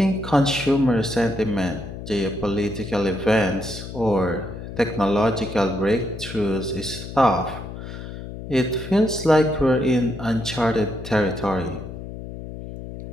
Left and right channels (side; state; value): left; noise; hum, 10 dB below the sound